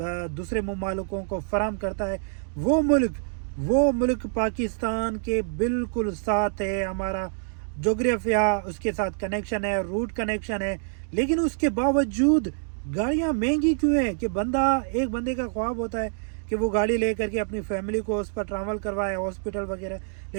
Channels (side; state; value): left; silent; digital silence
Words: दूसरे मुमालिकों को फराहम करता है। वो मुल्क पाकिस्तान के बिल्कुल साथ है। हमारा जोग्राफिया उसके साथ कनेक्शन है, रूट कनेक्शन है, लेकिन उसके बावजूद गाड़ियां महंगी क्यों है कि एक बंदे का ख्वाब होता है कि वो गाड़ी ले करके अपनी फैमिली को उस पर ट्रैवल करवाए, हॉस्पिटल वगैरह।